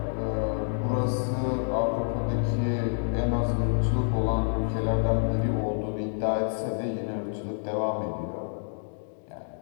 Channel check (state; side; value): silent; right; digital silence